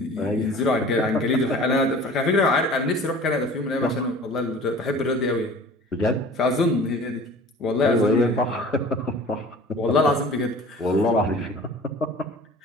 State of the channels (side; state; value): both; normal; correlation 0.44